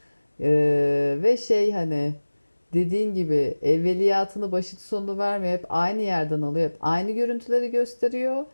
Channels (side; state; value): both; inverted; correlation -1.00